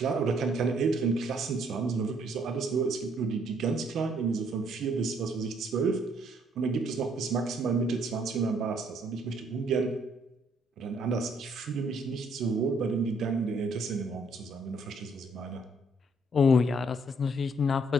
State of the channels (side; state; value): both; normal; correlation 0.66